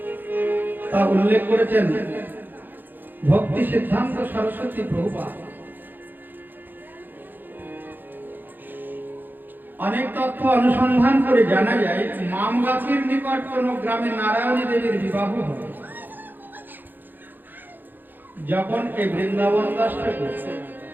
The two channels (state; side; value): late; left; 0.090 ms